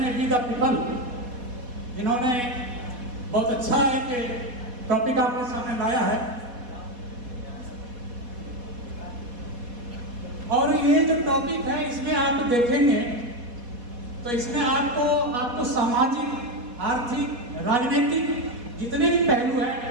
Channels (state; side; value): late; left; 4.2 ms